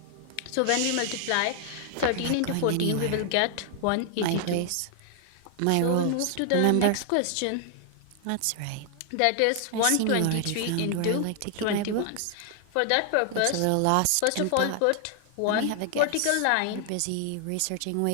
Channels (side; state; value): both; different; correlation 0.00